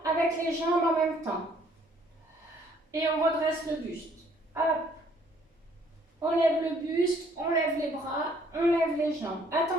avec les jambes en même temps. Et on redresse le buste. Hop. On lève le buste, on lève les bras, on lève les jambes.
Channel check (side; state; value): both; normal; correlation 0.62